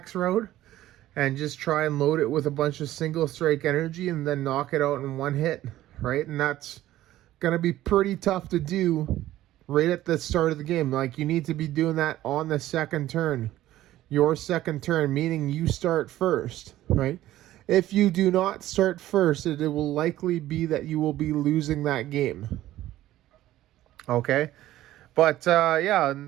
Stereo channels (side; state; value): left; quieter; 14.5 dB